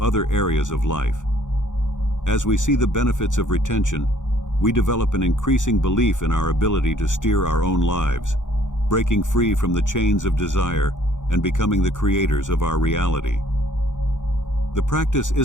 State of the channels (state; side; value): late; right; 0.86 ms